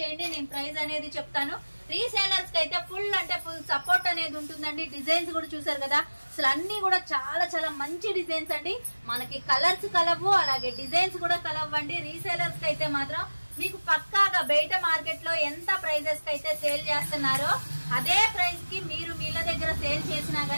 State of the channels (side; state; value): both; inverted; correlation -1.00